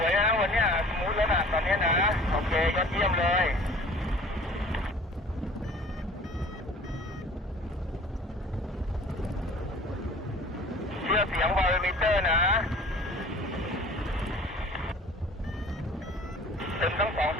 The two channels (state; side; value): normal; both; correlation 0.46